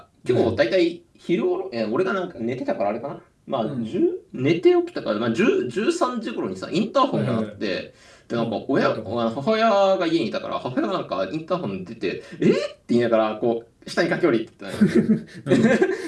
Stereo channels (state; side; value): identical; both; correlation 1.00